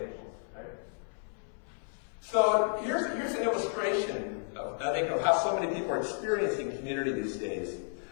right? So here's an illustration of how so many people are experiencing community these days.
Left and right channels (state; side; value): silent; right; 56 dB below the other